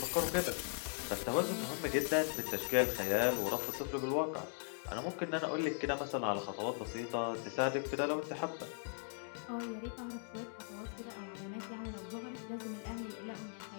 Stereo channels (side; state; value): right; silent; 52 dB below the other